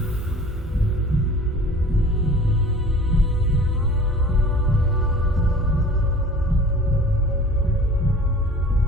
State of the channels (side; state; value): both; normal; correlation 0.44